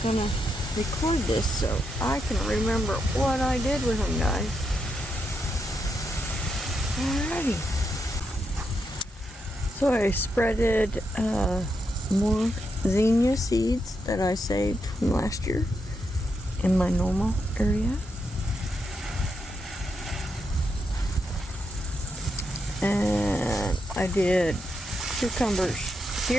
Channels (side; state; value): both; normal; correlation 0.83